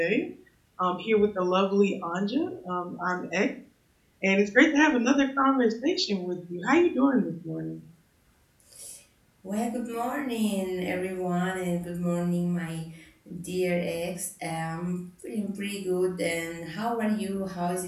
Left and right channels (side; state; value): both; identical; correlation 1.00